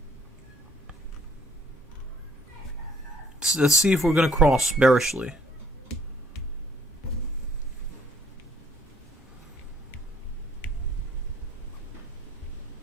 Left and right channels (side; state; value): both; normal; correlation 0.60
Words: Let's see if we're going to cross bearishly.